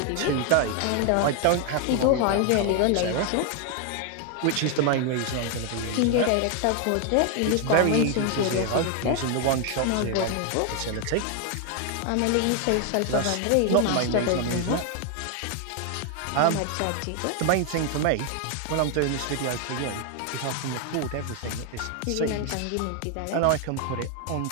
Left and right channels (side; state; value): both; different; correlation 0.01